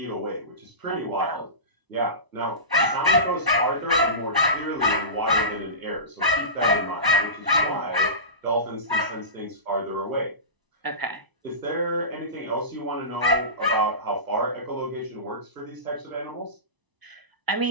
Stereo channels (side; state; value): left; late; 1.0 ms